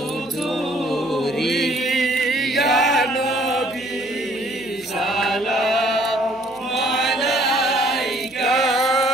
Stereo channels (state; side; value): noise; right; hum, 28 dB below the sound